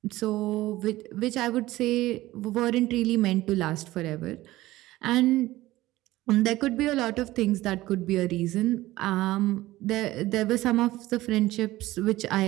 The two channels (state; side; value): quieter; left; 17.2 dB